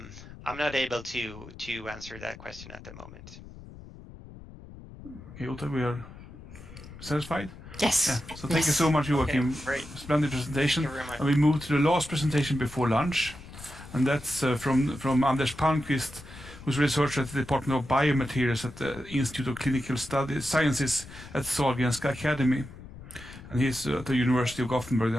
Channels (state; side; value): noise; left; rumble, 16 dB below the sound